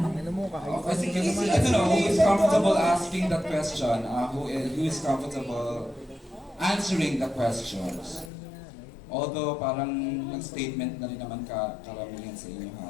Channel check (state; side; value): drops out; right; at 8.3 s